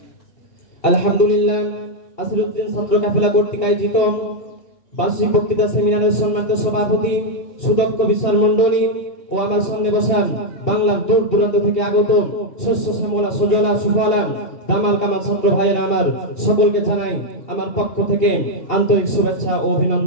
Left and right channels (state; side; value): late; right; 2.9 ms